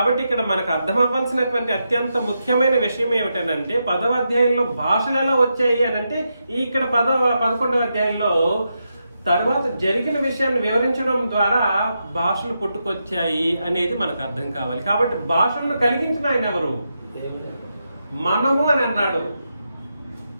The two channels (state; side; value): inverted; both; correlation -0.85